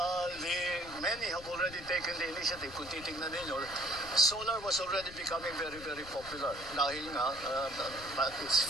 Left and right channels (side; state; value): left; noise; rumble, 16 dB below the sound